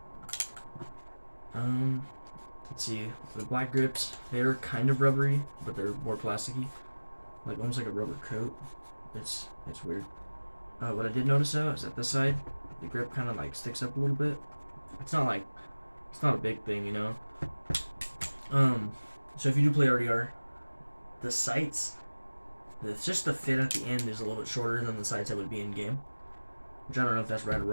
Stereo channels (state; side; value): inverted; both; correlation -1.00